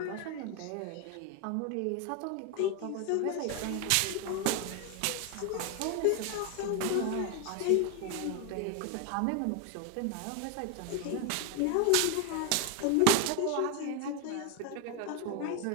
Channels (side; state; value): both; different; correlation 0.01